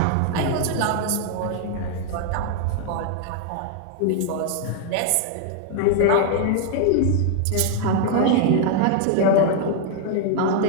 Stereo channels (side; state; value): both; different; correlation 0.00